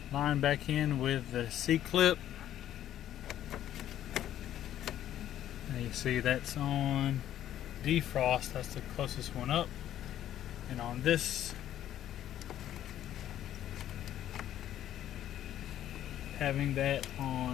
line back in with the C-clip. Now you see that's on defrost, that's the closest one up. And on this, having that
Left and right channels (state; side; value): quieter; right; 11.7 dB